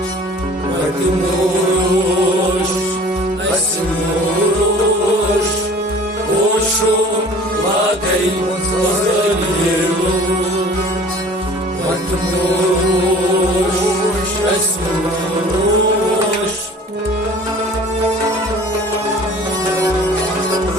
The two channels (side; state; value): both; normal; correlation 0.46